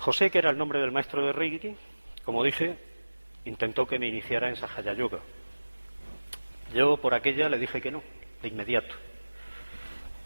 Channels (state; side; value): inverted; both; correlation -1.00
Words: que era el nombre del maestro de Reiki, como dije, intentó que me iniciara en Sahaya Yoga. Yo por aquella le dije que no, de inmediato.